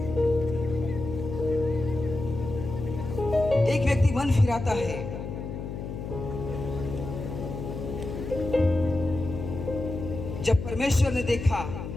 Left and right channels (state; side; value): noise; left; hum, 7 dB below the sound